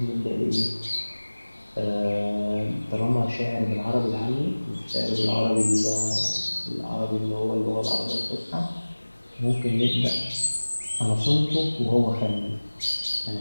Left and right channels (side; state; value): both; inverted; correlation -1.00